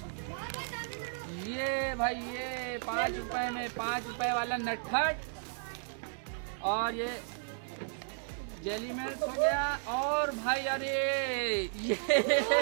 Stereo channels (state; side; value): silent; left; digital silence